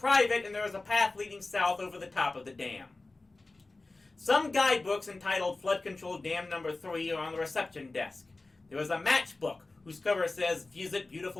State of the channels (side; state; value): right; quieter; 3.3 dB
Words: and there is a path leading south over the top of the dam. Some guidebooks entitled Flood Control Dam Number 3 are on the reception desk. There is a matchbook whose cover says, "Visit